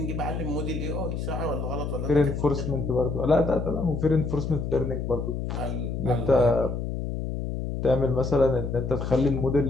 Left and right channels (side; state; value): left; noise; hum, 4 dB below the sound